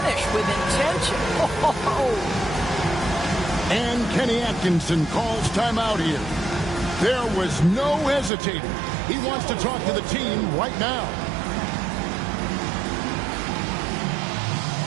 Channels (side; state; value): left; drops out; at 8.3 s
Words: with intention? And Kenny Atkinson calls timeout here. There was no hesitating. He wants to talk to the team right now.